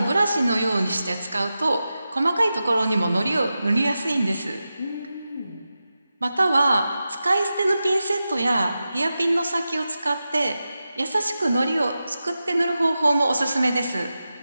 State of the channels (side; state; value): both; inverted; correlation -0.92